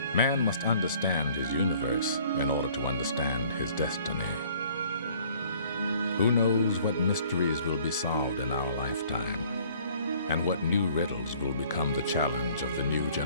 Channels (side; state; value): both; inverted; correlation -0.56